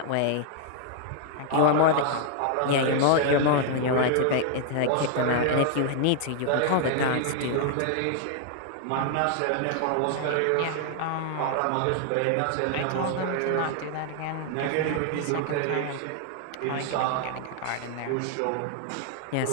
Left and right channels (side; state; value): both; different; correlation 0.00